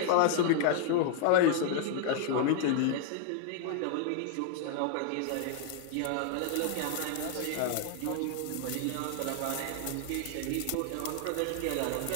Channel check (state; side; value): different; both; correlation 0.00